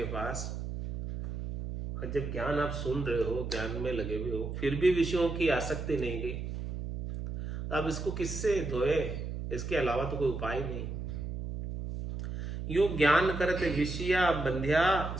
पास और जब ज्ञान आप सुन रहे हो, ज्ञान में लगे हुए हो, फिर भी विषयों की आसक्ति नहीं गई, तो अब इसको किससे धोए? इसके अलावा तो कोई उपाय नहीं। यूं ज्ञान करते विषया बंध्या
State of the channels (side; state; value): right; noise; hum, 5 dB below the sound